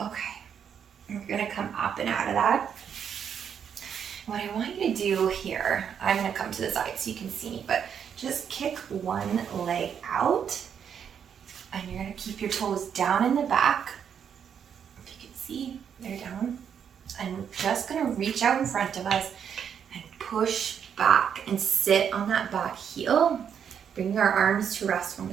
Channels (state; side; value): quieter; left; 7.9 dB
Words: Okay, we're gonna come up and out of that. What I want you to do here, I'm gonna come to the side so you can see me, but just kick one leg out, and you're gonna keep your toes down in the back. If you can see, they're down. And we're just gonna reach out in front of us and push back and sit on that back heel. Bring our arms to rest on